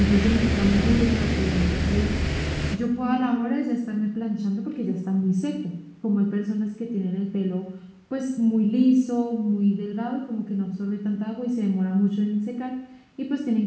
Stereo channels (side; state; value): both; identical; correlation 1.00